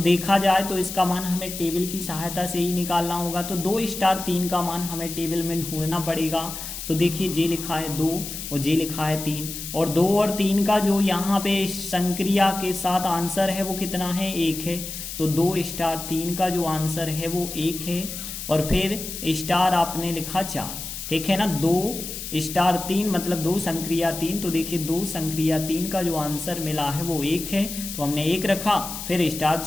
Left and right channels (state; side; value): noise; left; hiss, 8 dB below the sound